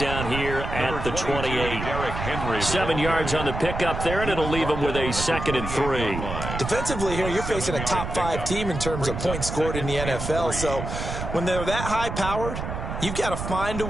here at the 28. 7 yards on the pickup there, and it'll leave him with a 2nd and 3. Defensively here, you're facing a top-5 team in terms of points scored in the NFL. So when they're that high-powered, you've got to find a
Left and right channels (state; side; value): noise; right; rumble, 5 dB below the sound